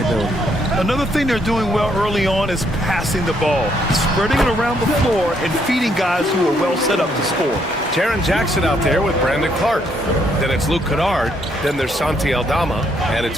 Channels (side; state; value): both; normal; correlation 0.71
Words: Another thing they're doing well early on is passing the ball, spreading it around the floor and feeding guys who are well set up to score. Jaren Jackson out there with Brandon Clark. Then it's Luke Kennard. Then there's Santi Aldama. And it's